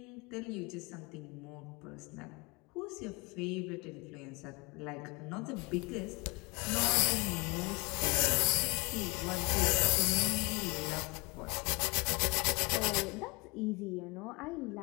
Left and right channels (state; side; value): quieter; right; 28.2 dB